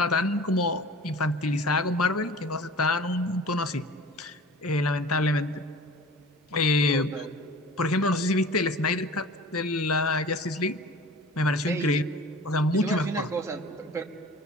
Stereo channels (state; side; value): normal; both; correlation 0.41